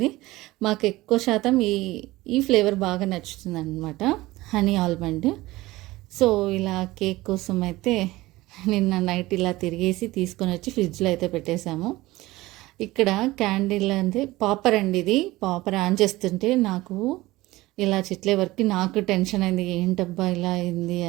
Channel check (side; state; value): left; quieter; 18.8 dB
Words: మాకు ఎక్కువ శాతం ఈ ఫ్లేవర్ బాగా నచ్చుతుంది అనమాట, హనీ ఆల్మండ్. సో ఇలా కేక్ కోసం అయితే నిన్న నైట్ ఇలా తిరిగేసి తీసుకొని వచ్చి ఫ్రిడ్జ్లో అయితే పెట్టేశాము. ఇక్కడ క్యాండిల్ అంటే పాపర్ అండి, ఇది పాపర్ ఆన్ చేస్తుంటే నాకు ఇలా చిట్లే వరకు నాకు టెన్షన్ అయింది, ఏంటబ్బా ఇలా అయింది